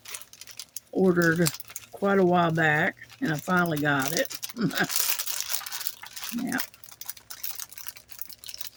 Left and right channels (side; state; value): both; identical; correlation 1.00